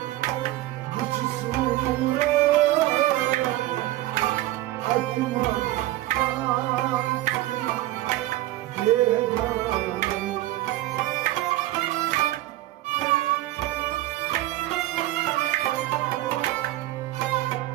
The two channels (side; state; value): left; quieter; 16.3 dB